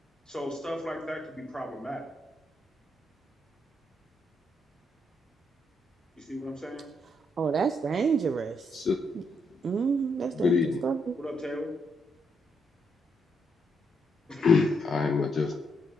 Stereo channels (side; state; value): both; normal; correlation 0.77